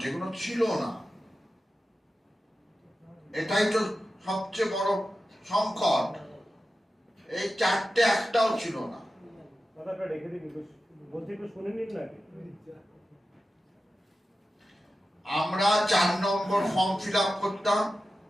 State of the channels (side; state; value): both; normal; correlation 0.93